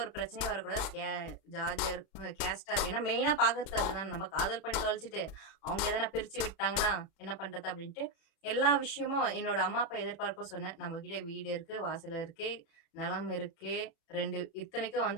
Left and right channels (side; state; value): right; late; 36 ms